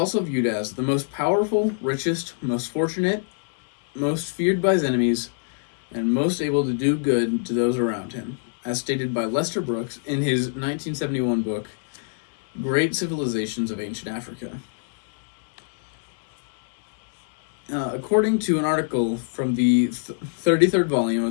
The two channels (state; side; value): silent; right; digital silence